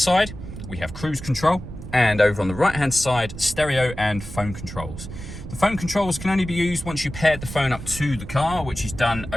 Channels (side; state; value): right; noise; rumble, 11 dB below the sound